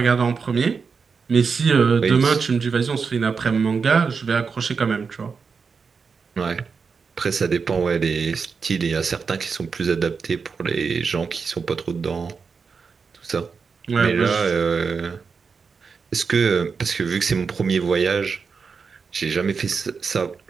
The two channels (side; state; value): left; quieter; 5.4 dB